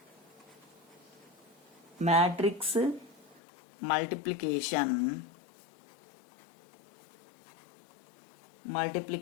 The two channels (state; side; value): drops out; right; at 3.4 s